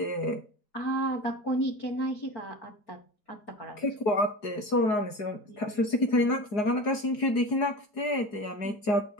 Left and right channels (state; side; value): late; right; 4.8 ms